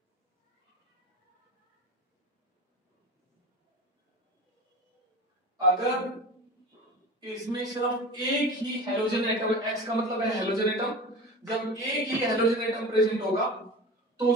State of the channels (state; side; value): normal; both; correlation 0.33